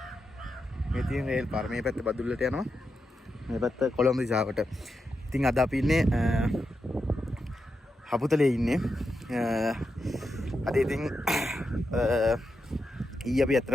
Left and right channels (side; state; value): both; normal; correlation 0.86